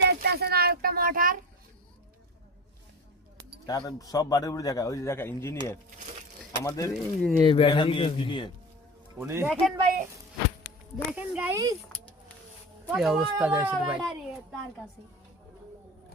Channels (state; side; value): normal; both; correlation 0.32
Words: দেখতেছেন আর একটা মোটর তার সব বাড়ির উপরে দেখা ওই যে দেখা ইঞ্জিনিয়ার আমাদের ইঞ্জিনিয়ার ব্যাটারি ইঞ্জিনিয়ার উনি দেখেন ভাই দেখেন গাইস কি অবস্থা দেখছেন ভাই তার কাছে